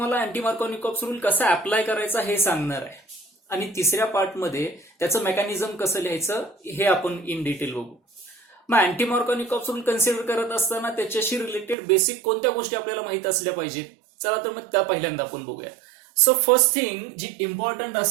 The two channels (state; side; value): drops out; left; at 11.8 s